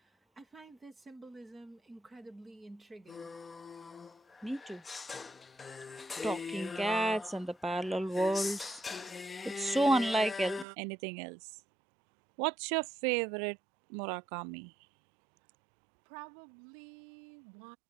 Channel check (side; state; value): left; drops out; at 10.7 s